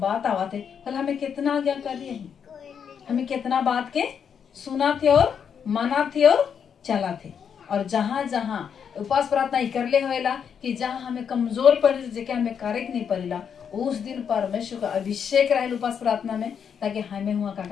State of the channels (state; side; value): quieter; right; 7.4 dB